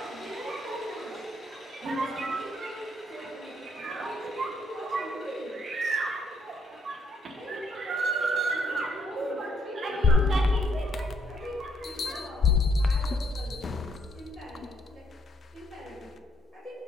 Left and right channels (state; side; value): normal; both; correlation 0.71